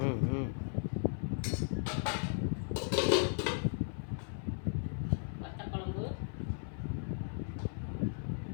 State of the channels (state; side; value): silent; right; 54 dB below the other